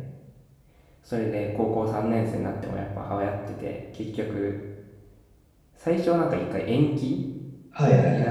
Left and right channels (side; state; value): both; identical; correlation 1.00